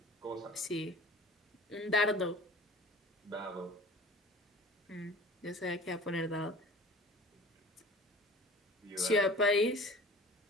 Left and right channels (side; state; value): both; normal; correlation 0.43